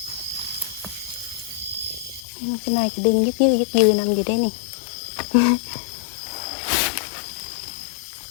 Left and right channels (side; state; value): right; drops out; at 2.2 s